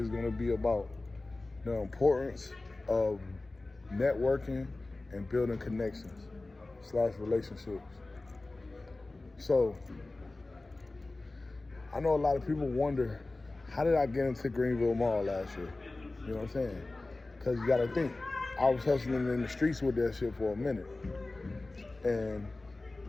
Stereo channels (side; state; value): right; quieter; 3.1 dB